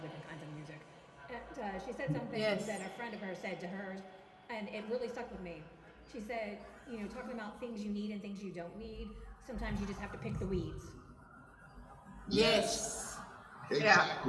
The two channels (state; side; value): identical; both; correlation 1.00